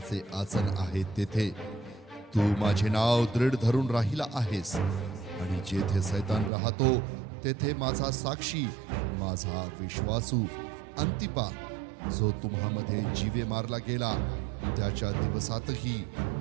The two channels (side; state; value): left; drops out; at 6.5 s